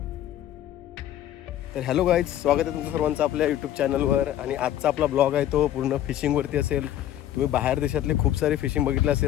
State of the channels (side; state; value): right; quieter; 12.0 dB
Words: तर हॅलो गाईज, स्वागत आहे तुमचं सर्वांचं आपल्या यूट्यूब चॅनलवर. आणि आजचा आपला ब्लॉग आहे तो पूर्ण फिशिंगवरती असेल. तुम्ही बाहेर देशातले खूप सारे फिशिंग बघितले